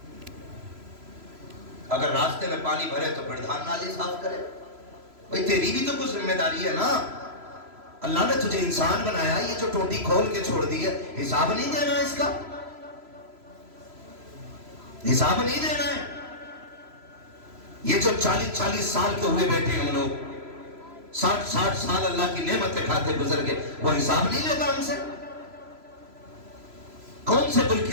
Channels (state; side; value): late; left; 3.0 ms